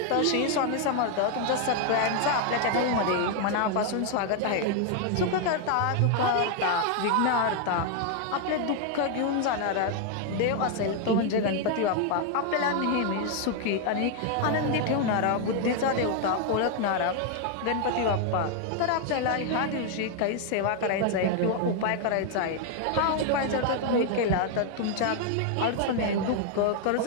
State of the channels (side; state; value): both; different; correlation 0.00